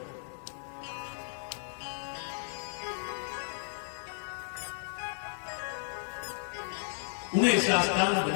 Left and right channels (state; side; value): silent; right; digital silence